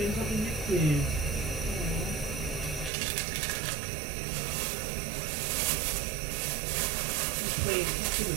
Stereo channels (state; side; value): drops out; left; at 2.9 s